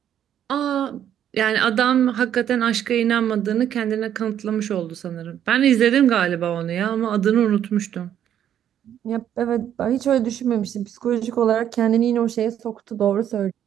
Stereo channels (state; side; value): quieter; left; 10.1 dB